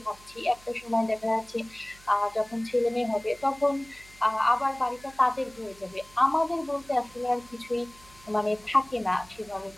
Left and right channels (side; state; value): right; noise; hum, 24 dB below the sound